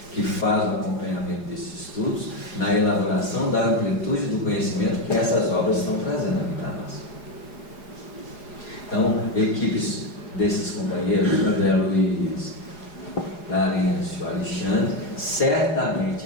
que faz o acompanhamento desses estudos na elaboração da amplitude do conhecimento que essas obras estão trazendo aqui para nós. Então, equipes desses companheiros, André Luiz, Larêncio, Alexandre,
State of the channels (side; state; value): right; late; 4.8 ms